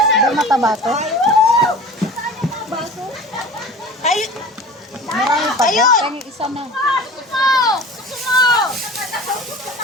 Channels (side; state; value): both; normal; correlation 0.38